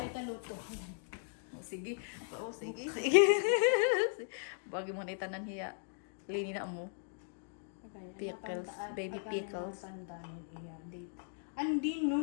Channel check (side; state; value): right; silent; digital silence